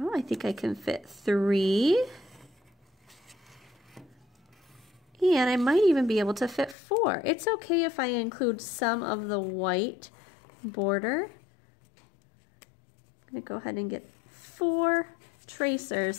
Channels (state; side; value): drops out; right; at 6.8 s